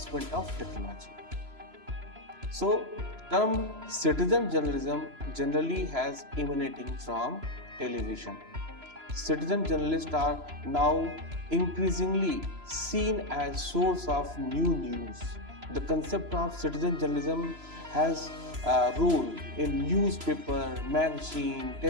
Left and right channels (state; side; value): late; left; 3.0 ms